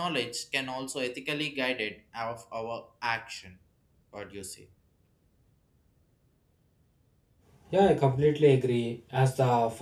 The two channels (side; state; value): both; identical; correlation 1.00